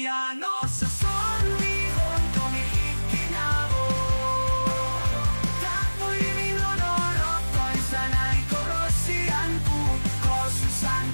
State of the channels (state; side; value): inverted; both; correlation -1.00